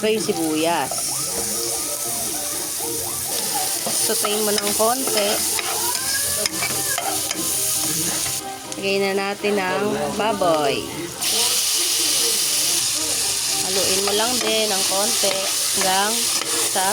yung sibuyas. Sutayin mo ng konti. Lagay na natin ang baboy. Haluin mo lang din ng konti hanggang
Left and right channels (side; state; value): both; identical; correlation 1.00